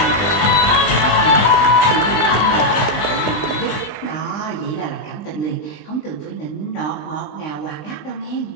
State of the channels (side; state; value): right; late; 20 ms